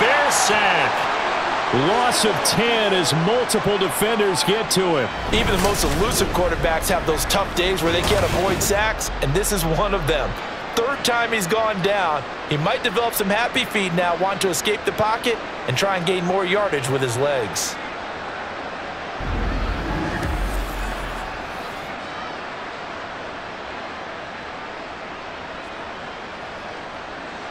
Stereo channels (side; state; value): both; identical; correlation 1.00